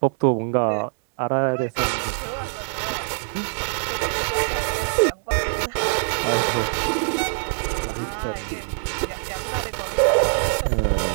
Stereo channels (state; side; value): silent; left; digital silence